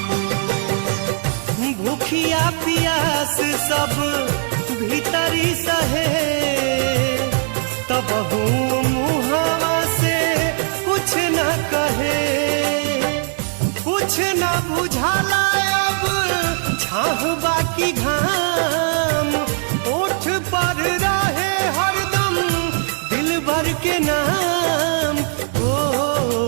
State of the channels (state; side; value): silent; left; 59 dB below the other